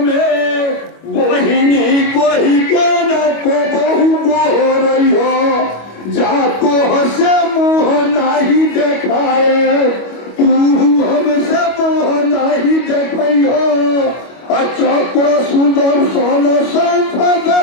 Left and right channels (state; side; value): late; right; 25 ms